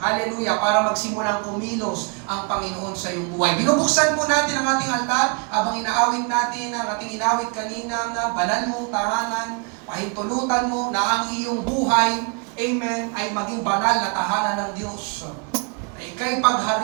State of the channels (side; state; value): left; quieter; 35.5 dB